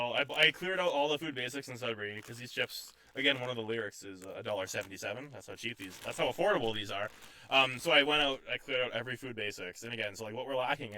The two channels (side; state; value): both; identical; correlation 1.00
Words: I cleared out all the food basics in Sudbury because these chips. Again, one of the lyrics is $1.77. That's how cheap these. That's how affordable these are. So I went out. I cleared out every food basics, and again, so like what we're lacking